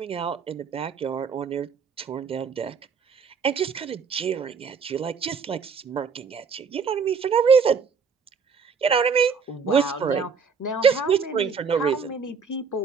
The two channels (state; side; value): quieter; left; 5.7 dB